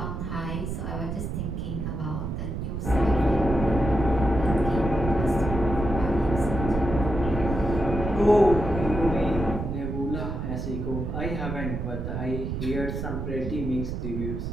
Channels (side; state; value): right; noise; rumble, 4 dB below the sound